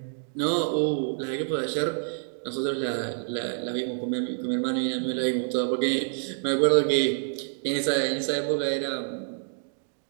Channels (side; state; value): left; silent; digital silence